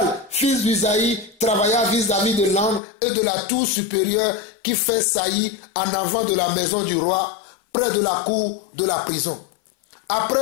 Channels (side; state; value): right; drops out; at 2.8 s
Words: fils d'Usaï, travailla vis-à-vis de l'angle et de la tour supérieure qui fait saillie en avant de la maison du roi, près de la cour de la prison.